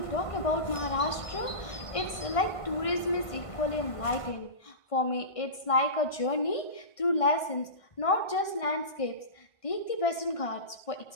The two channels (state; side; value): late; right; 1.6 ms